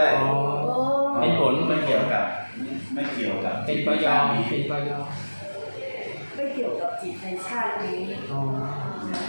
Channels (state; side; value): inverted; both; correlation -1.00